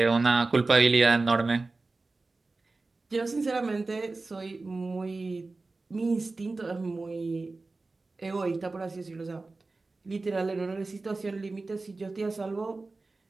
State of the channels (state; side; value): quieter; left; 3.5 dB